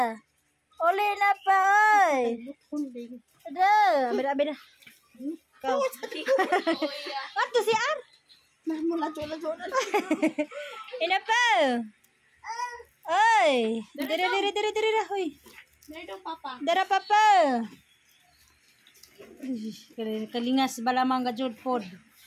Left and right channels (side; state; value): both; identical; correlation 1.00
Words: Uli na pa, oy. Ada, abida. Kau. Ato si Ar. Ina pa. Oy. Diri dah, hoy. Dara papa. Kalingas balamang gajud pod.